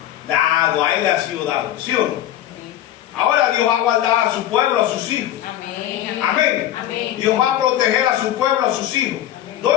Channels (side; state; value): right; quieter; 12.5 dB